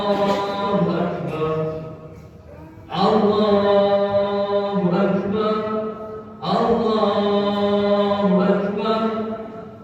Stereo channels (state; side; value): identical; both; correlation 1.00